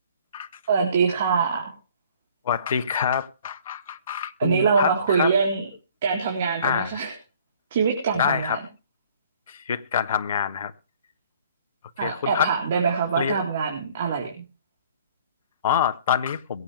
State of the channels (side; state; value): both; inverted; correlation -0.55